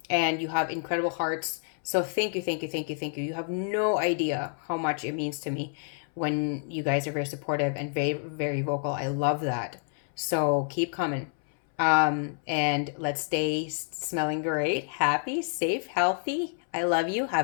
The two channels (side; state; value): right; silent; 59 dB below the other